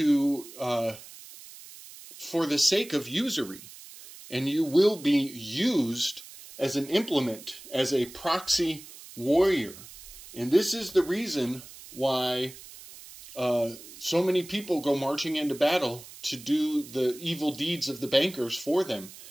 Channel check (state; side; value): noise; right; hiss, 17 dB below the sound